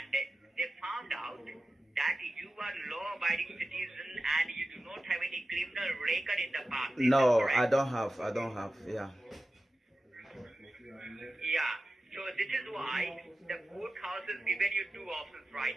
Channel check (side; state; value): both; normal; correlation 0.94